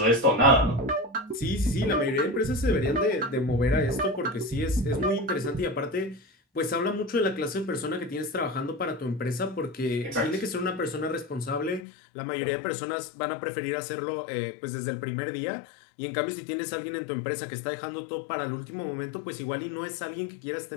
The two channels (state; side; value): drops out; right; at 11.9 s